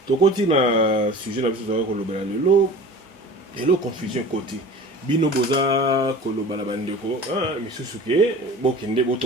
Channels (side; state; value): both; normal; correlation 0.39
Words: tokoti na sujet na biso tozali kolobela lelo confusion côté bino boza koloba na bandeko misusu ke bokende